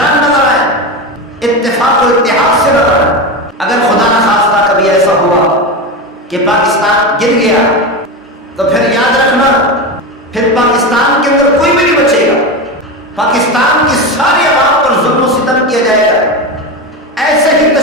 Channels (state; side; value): normal; both; correlation 0.19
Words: نظر آئے، اتفاق و اتحاد سے نظر آئے۔ اگر خدا نہ خواستہ کبھی ایسا ہوا کہ پاکستان گر گیا تو پھر یاد رکھنا، پھر پاکستان کے اندر کوئی بھی نہیں بچے گا۔ پاکستان کی ساری عوام پر ظلم و ستم کیا جائے گا، ایسے ہی